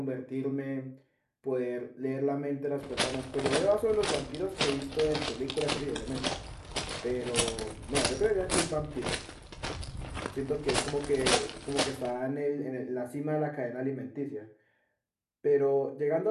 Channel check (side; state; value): both; identical; correlation 1.00